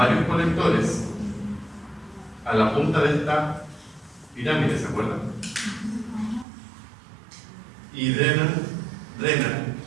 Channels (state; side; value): drops out; left; at 6.5 s